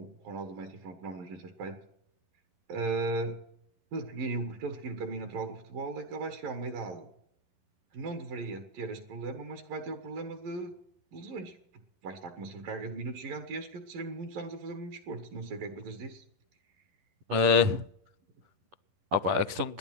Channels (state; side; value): late; left; 11 ms